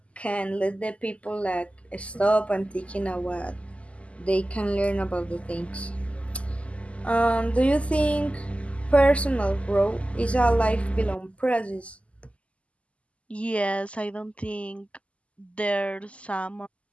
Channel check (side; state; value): right; late; 0.061 ms